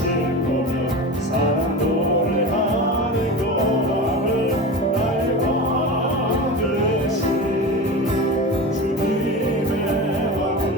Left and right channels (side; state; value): both; normal; correlation 0.27